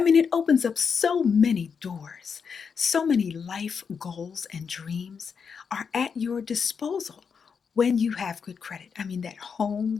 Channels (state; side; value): quieter; right; 6.2 dB